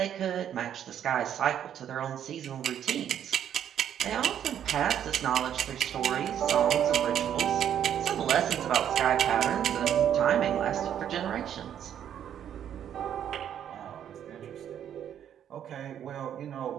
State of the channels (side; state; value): left; quieter; 9.7 dB